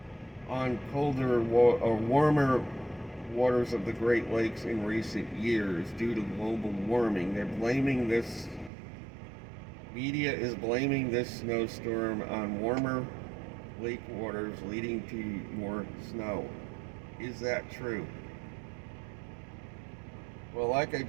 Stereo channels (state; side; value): drops out; left; at 8.7 s